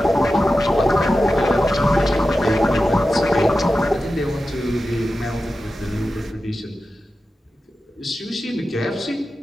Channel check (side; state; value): both; normal; correlation 0.92